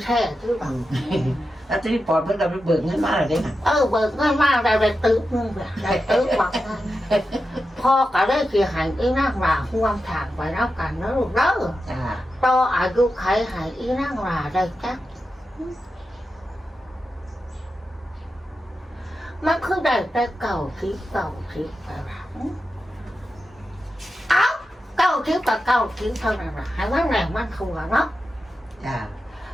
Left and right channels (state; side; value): normal; both; correlation 0.90